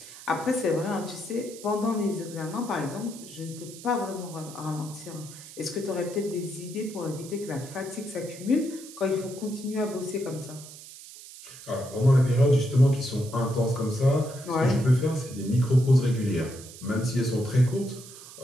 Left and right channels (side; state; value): right; noise; hiss, 16 dB below the sound